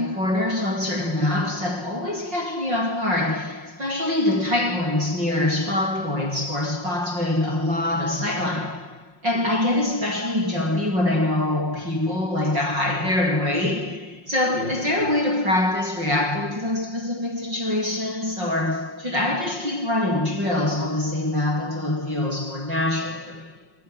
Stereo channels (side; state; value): left; late; 5.6 ms